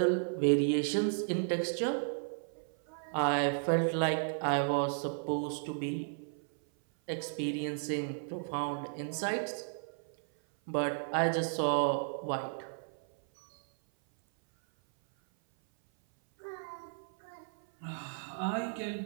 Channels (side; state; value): left; silent; 55 dB below the other